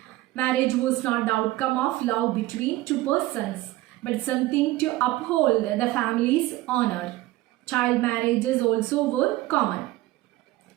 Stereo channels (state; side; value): quieter; left; 17.7 dB